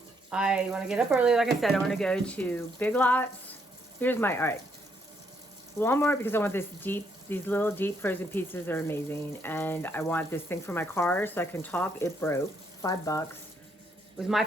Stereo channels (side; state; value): both; normal; correlation 0.72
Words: I want to get up early. Like I said, I want to go to Big Lots. Here's my, all right. Walmart, because I want these little deep frozen pizzas are amazing. And I want this thing for my car so I can talk. It broke, $5. It was my